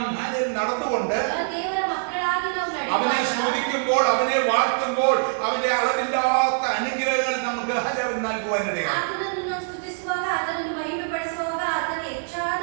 നടന്നുകൊണ്ട് അവനെ സ്തുതിക്കുമ്പോൾ അവനെ വാഴ്ത്തുമ്പോൾ അവന്റെ അളവില്ലാത്ത അനുഗ്രഹങ്ങൾ നമുക്ക് നൽകുവാനിടയാണ്.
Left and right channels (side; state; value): left; silent; 55 dB below the other